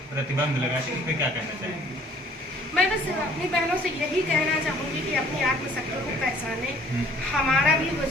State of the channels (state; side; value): normal; both; correlation 0.56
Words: प्रतिबंध लगाती है, इस पर क्या कहना चाहेंगे? मैं बस अपनी बहनों से यही कहना चाहूँगी कि अपनी आत्मशक्ति को पहचाने। हमारा भी